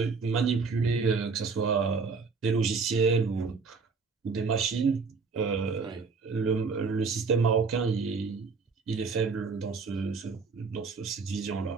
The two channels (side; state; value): left; quieter; 4.8 dB